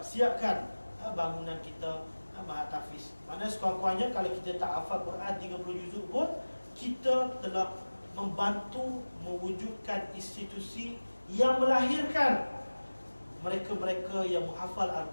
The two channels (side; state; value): both; inverted; correlation -1.00